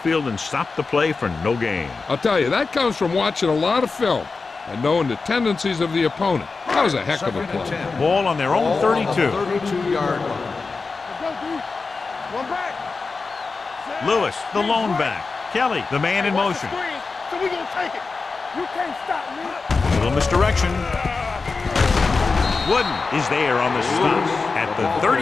and stop the play for no gain. I'll tell you, that comes from watching a lot of film and knowing the tendencies of the opponent. That was a heck of a play. Ball on their own 32. 32-yard line. One back. Lewis, the lone back. Kelly, the man in motion. So we gonna take it. You can't stop me. Little misdirection. Wooden is there on the stop at the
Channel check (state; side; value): quieter; right; 4.3 dB